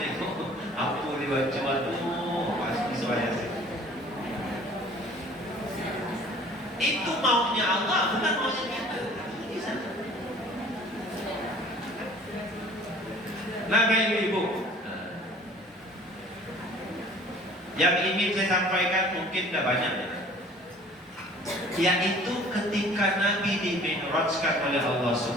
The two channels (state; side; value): normal; both; correlation 0.50